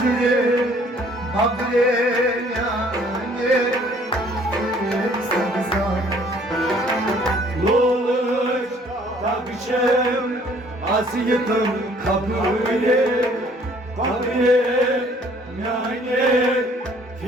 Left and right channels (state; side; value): normal; both; correlation 0.58